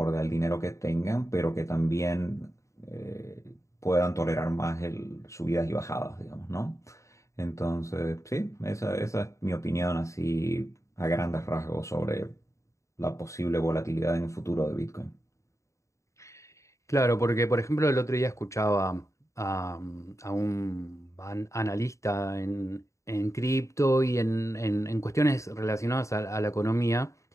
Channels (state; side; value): late; right; 0.15 ms